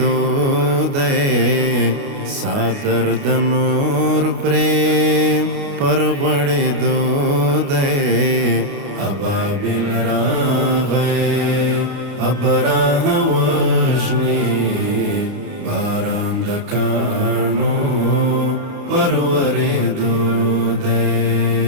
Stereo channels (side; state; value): left; late; 29 ms